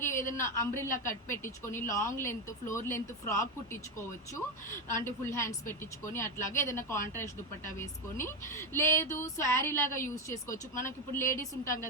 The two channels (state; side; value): normal; both; correlation 0.10